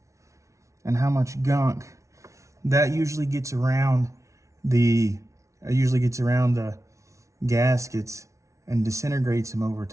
and how much gunk, that usually gets around the gaskets and disintegrates them over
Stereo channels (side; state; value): left; late; 0.14 ms